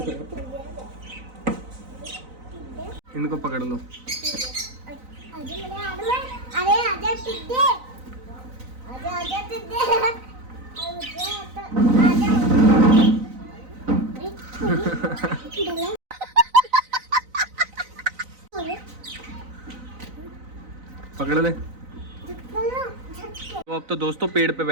इनको पकड़ लो। अरे आजा पकड़ ले। तो अब तो दोस्तों पेड़ पे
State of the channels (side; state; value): left; late; 4.0 ms